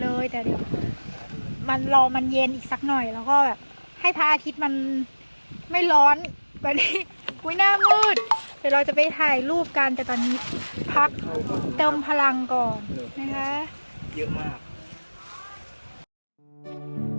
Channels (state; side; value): inverted; both; correlation -1.00